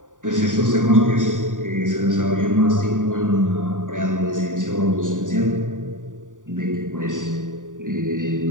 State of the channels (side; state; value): left; late; 0.88 ms